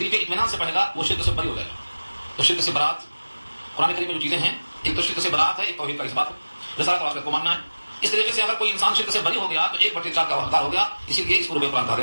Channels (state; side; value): inverted; both; correlation -1.00